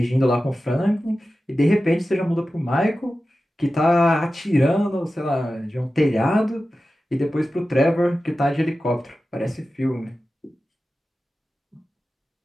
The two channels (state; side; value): normal; both; correlation 0.94